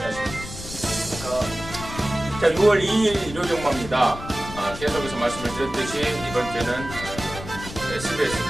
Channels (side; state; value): left; noise; rumble, 11 dB below the sound